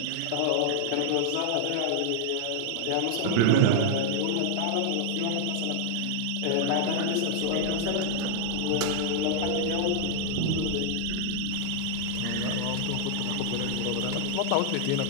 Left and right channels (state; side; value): different; both; correlation 0.00